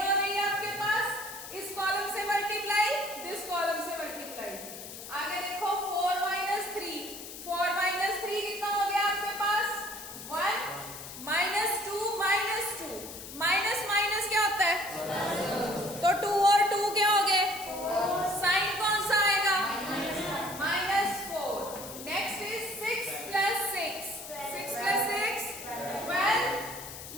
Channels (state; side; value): noise; left; hiss, 12 dB below the sound